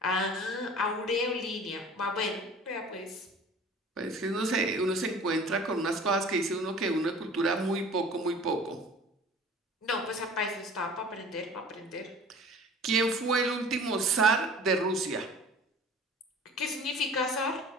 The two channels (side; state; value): both; normal; correlation 0.44